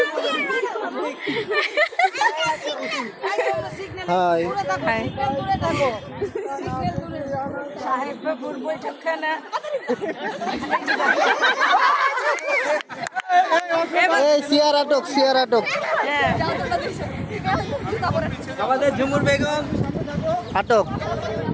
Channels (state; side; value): identical; both; correlation 1.00